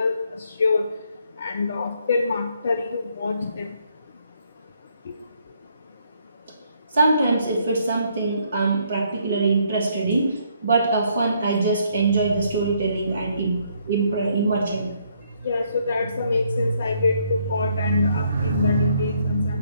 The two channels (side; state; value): both; inverted; correlation -0.70